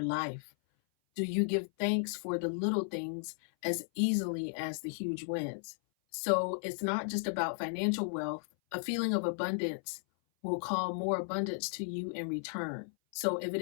life? Do you give thanks for the little things as easily as the huge wins? So, it's not just about financial wealth. A feeling of abundance will call more abundance to you in return. So, if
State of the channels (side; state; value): right; silent; 55 dB below the other